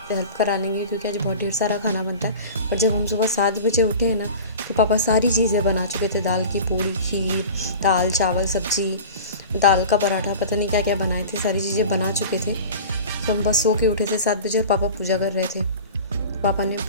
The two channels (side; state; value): both; inverted; correlation -0.36